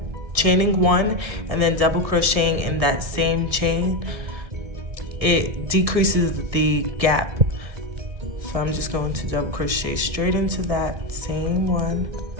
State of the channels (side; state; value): left; late; 1.7 ms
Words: chaining 1 and then double crocheting in that same chain, it decreases the gap. So I'm just going to double crochet straight into that same one